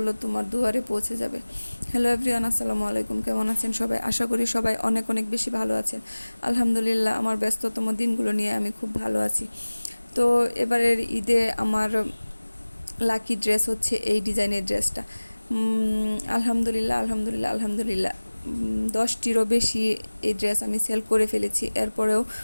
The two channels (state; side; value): inverted; both; correlation -1.00